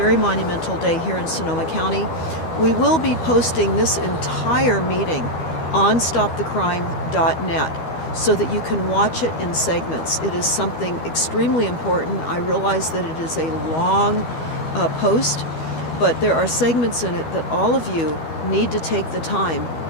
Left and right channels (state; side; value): late; right; 12 ms